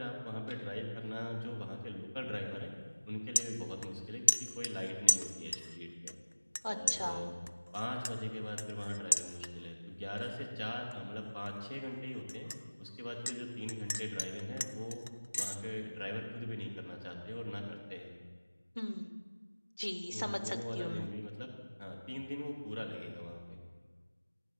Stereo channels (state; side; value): inverted; both; correlation -1.00